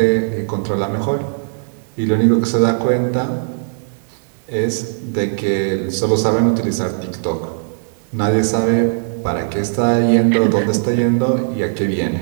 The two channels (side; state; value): left; silent; digital silence